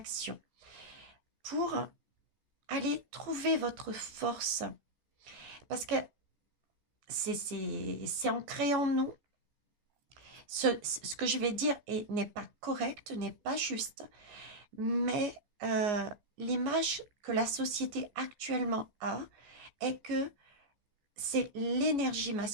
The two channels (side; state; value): left; late; 14 ms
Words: pour aller trouver votre force. Parce que c'est ancré en nous. Ce que je vais dire n'est pas correct, n'est pas juste, mais l'image que la société actuellement a est que c'est l'énergie